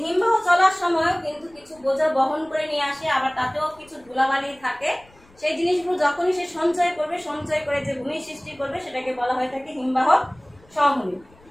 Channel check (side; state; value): left; noise; rumble, 29 dB below the sound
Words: হিমবাহ চলার সময়ও কিন্তু কিছু বোঝা বহন করে নিয়ে আসে, আবার তাতেও কিছু ধুলাবালি থাকে। সেই জিনিসগুলো যখনই সে সঞ্চয় করবে, সঞ্চয় করে যে ভূমি সৃষ্টি করবে, সেটাকে বলা হয়ে থাকে হিমবাহ সমভূমি।